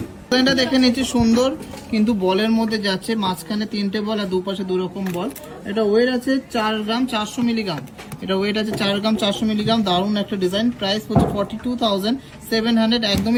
ডিজাইনটা দেখে নিচ্ছি সুন্দর, কিন্তু বলের মধ্যে যাচ্ছে, মাঝখানে 3টে বল আর দুপাশে 2 রকম বল। এটা ওয়েট আছে 4 গ্রাম 400 মিলিগ্রাম, এটা ওয়েট আছে 4 গ্রাম 400 মিলিগ্রাম। দারুণ একটা ডিজাইন। প্রাইস হচ্ছে 42,700,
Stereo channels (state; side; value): identical; both; correlation 1.00